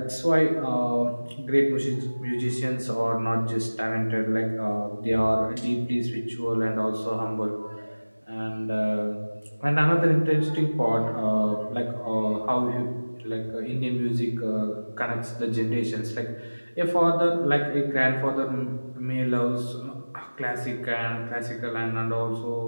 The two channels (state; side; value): inverted; both; correlation -1.00